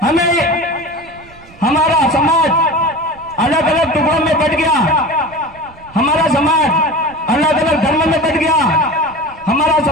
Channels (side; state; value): right; noise; rumble, 24 dB below the sound